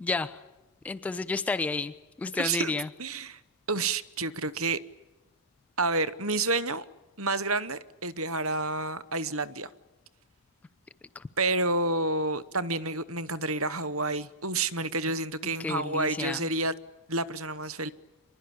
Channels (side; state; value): both; normal; correlation -0.14